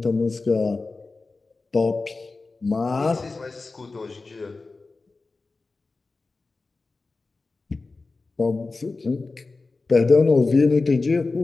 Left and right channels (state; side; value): quieter; right; 3.7 dB